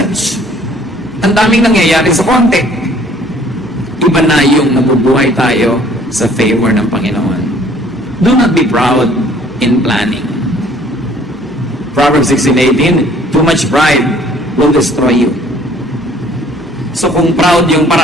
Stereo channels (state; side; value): normal; both; correlation 0.57